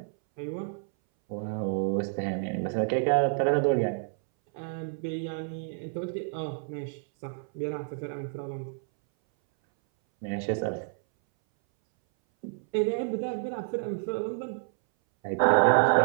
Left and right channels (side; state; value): left; silent; 59 dB below the other